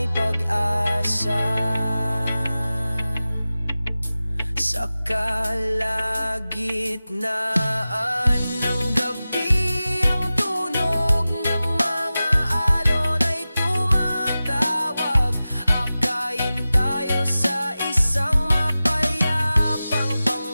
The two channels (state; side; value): inverted; both; correlation -0.96